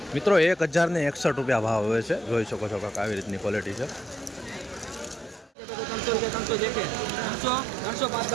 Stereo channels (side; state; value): left; drops out; at 5.5 s